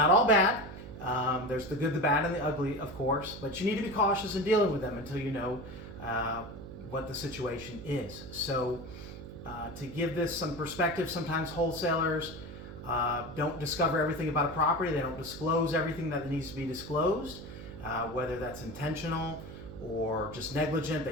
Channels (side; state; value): right; noise; hum, 12 dB below the sound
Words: all bad. There's the good, the bad, and the ugly, of course, but you need to be cautious in dealing with them until you know what the situation is. So to give this some perspective, sometimes wholesalers don't discover everything about a property. They don't disclose everything that needs to be disclosed, whether that's intentional or just negligent.